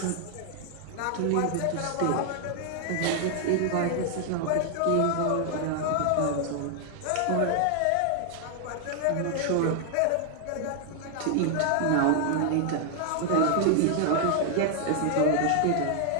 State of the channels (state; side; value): different; both; correlation 0.00